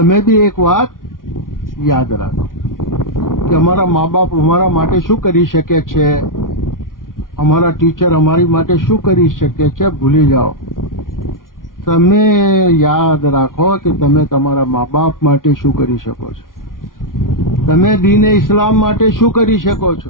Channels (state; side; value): late; right; 0.90 ms